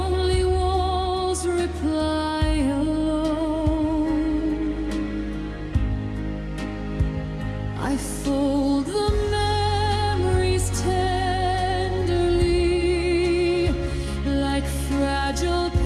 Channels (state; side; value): identical; both; correlation 1.00